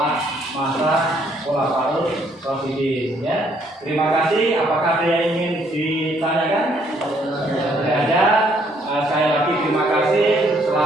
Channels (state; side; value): normal; both; correlation 0.67